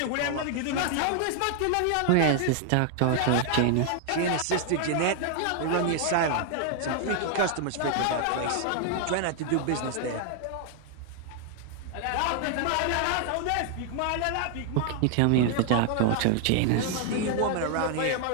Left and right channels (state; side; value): different; both; correlation 0.00